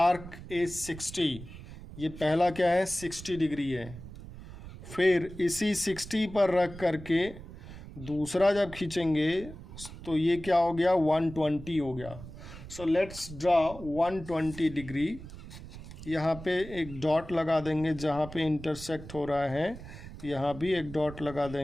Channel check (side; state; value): right; noise; rumble, 14 dB below the sound